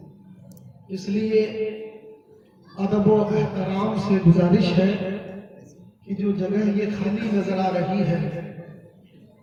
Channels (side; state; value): both; identical; correlation 1.00